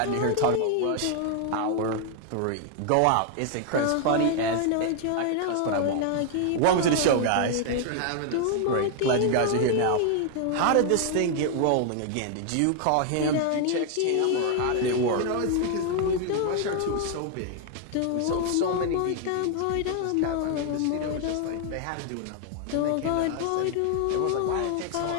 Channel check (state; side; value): different; both; correlation 0.00